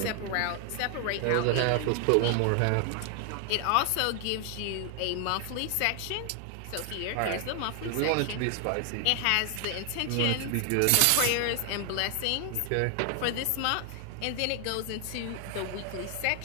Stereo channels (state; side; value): different; both; correlation 0.00